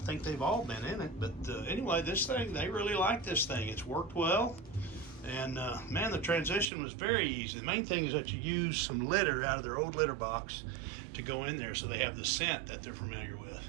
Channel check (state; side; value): drops out; left; at 6.7 s